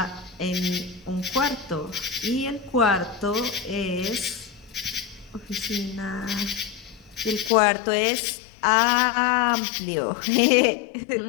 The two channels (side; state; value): right; drops out; at 7.5 s